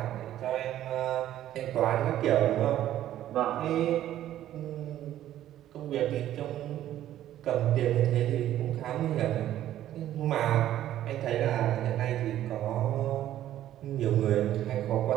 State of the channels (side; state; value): left; quieter; 12.5 dB